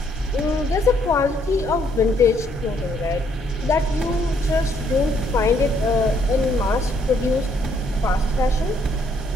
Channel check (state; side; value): normal; both; correlation 0.69